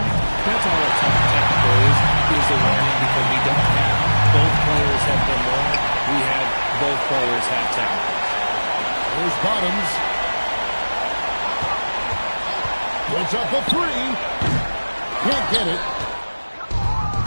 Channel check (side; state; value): both; inverted; correlation -1.00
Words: That's all a technical is a warning, because we don't have both players have been warned. We have both players have technical. There's Bottoms. Puts up a three. Can't get it.